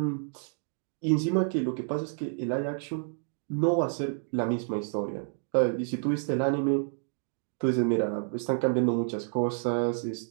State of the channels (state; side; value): silent; left; 56 dB below the other